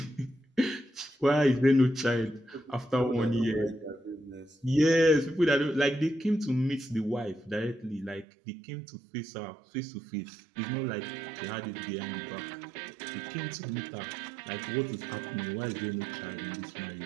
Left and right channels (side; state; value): left; drops out; at 8.2 s